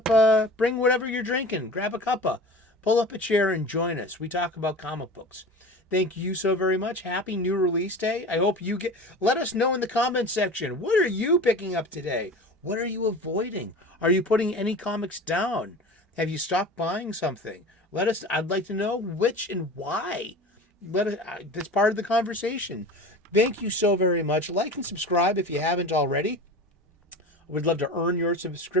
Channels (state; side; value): normal; both; correlation 0.35